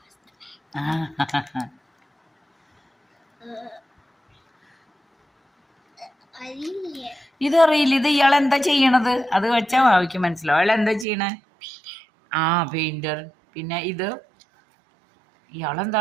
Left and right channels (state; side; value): drops out; left; at 11.1 s